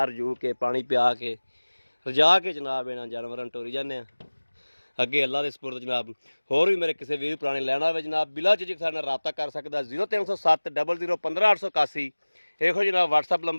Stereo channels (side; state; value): both; inverted; correlation -1.00